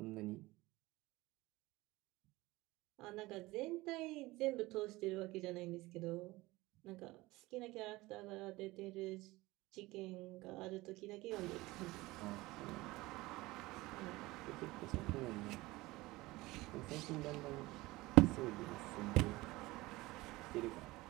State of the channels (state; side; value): quieter; left; 20.1 dB